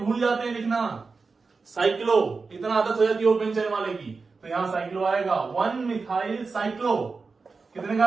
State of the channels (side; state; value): left; quieter; 4.4 dB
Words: जाते हैं लिखना साइक्लो, इतना आदत हो जाती है ओपन चेन वाले की, तो यहाँ साइक्लो आएगा, 1 मिथाइल साइक्लो। कितने